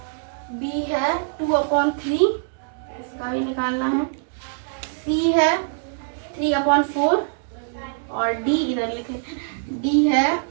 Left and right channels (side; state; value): left; silent; digital silence